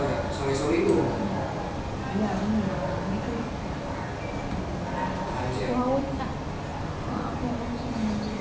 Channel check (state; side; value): identical; both; correlation 1.00